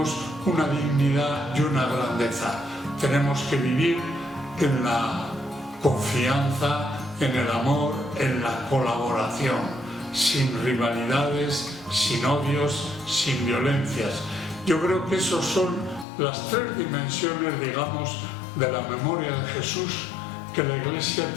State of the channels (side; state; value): right; drops out; at 16.1 s